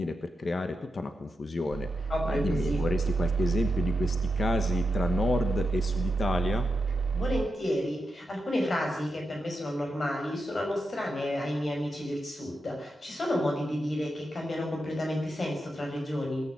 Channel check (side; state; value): both; normal; correlation 0.87